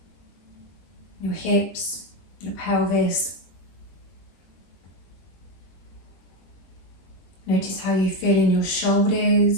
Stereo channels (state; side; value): late; right; 21 ms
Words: your hips, your pelvis. Notice how you feel in your